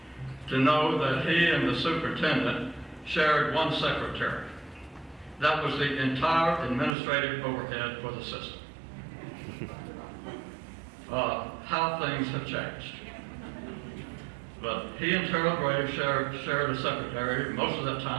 to know that he and the superintendent shared one secretary. That was the entire administrative overhead for the system. How things have changed. But he and Terrell Graves shared a secretary. Most of that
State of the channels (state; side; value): drops out; left; at 7.0 s